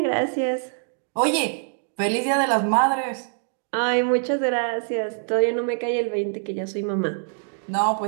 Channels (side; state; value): left; silent; digital silence